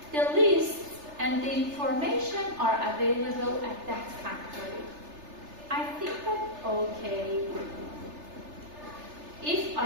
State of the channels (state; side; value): late; left; 3.3 ms